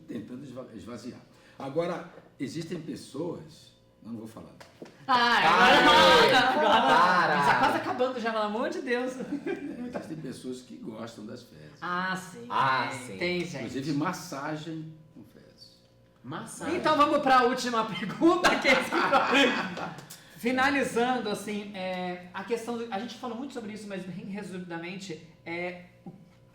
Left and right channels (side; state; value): both; identical; correlation 1.00